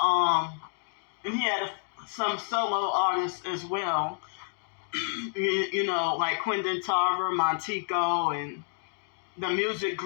And he had some solo artists as well. You know, like Quentin Tarver, Montego, and the music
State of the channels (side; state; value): right; silent; 58 dB below the other